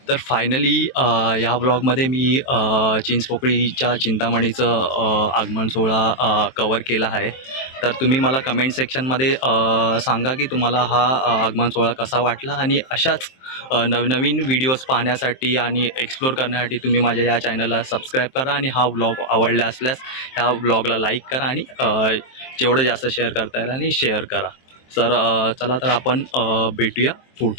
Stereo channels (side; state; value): right; late; 23 ms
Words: तर फायनली ह्या ब्लॉगमध्ये मी चिंचपोकळीच्या चिंतामणीचं आगमन सोहळा कवर केला आहे. तर तुम्ही मला कमेंट सेक्शनमध्ये सांगा की तुम्हाला हा आगमन सोहळा कसा वाटला, आणि अशाच नवनवीन व्हिडिओज पाहण्यासाठी आणि एक्सप्लोर करण्यासाठी तुम्ही माझ्या या चॅनलला सबस्क्राईब करा, आणि हा व्लॉग आवडला असल्यास ह्या व्लॉगला लाईक करा, आणि जेवढं जास्त शेअर करता येईल आणि शेअर करा. तर चला तर आपण भेटूया